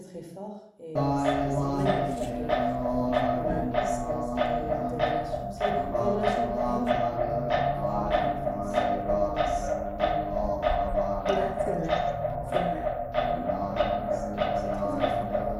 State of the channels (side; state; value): both; identical; correlation 1.00